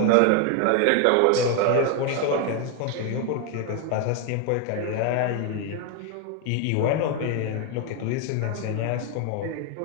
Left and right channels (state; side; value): different; both; correlation 0.01